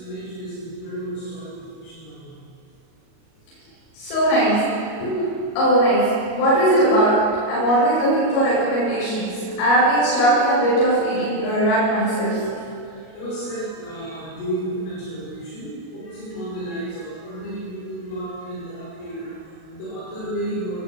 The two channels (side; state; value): right; late; 37 ms